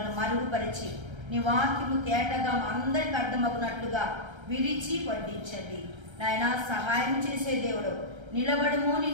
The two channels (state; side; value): late; left; 1.3 ms